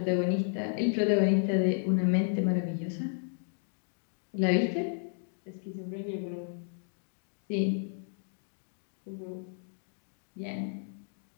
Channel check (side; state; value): right; silent; digital silence